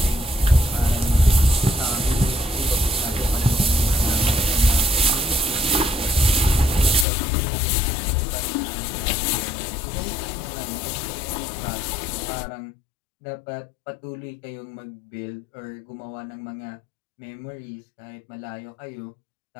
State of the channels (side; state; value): right; drops out; at 7.1 s